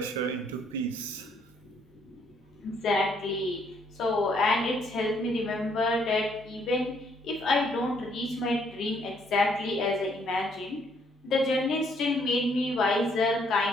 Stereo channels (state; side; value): normal; both; correlation 0.68